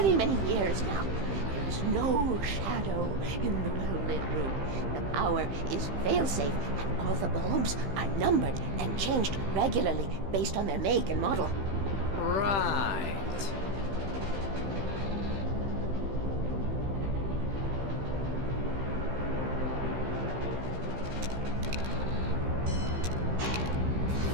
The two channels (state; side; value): late; left; 15 ms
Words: many years now. There is no shadow in the well-lit room. The power is fail-safe, and all the bulbs are numbered and changed regularly based on their make and model. Right.